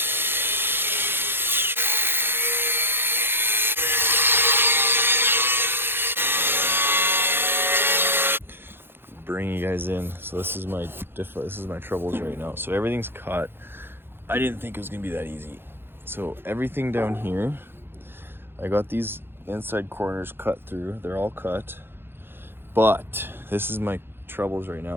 Bring you guys in. So this is my troubles right now. So everything's cut. I didn't think it was gonna be that easy. So everything down here, I got these inside corners cut through. They're all cut. But this is my troubles right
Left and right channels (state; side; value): late; left; 0.10 ms